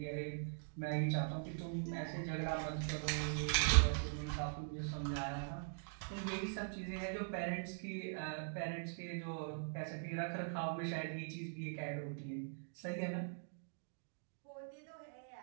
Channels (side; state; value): left; silent; digital silence